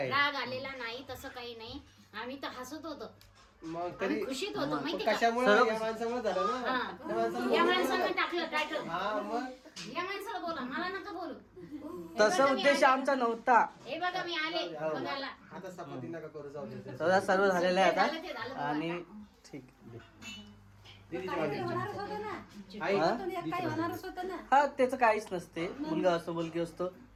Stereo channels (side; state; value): both; identical; correlation 1.00